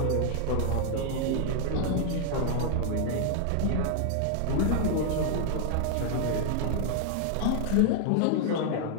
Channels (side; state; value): both; different; correlation 0.00